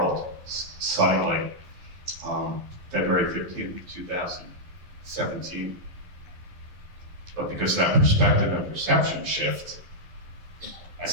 suddenly, February 15th, 2017. But because of that perspective and perception shift, I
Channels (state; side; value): late; left; 11 ms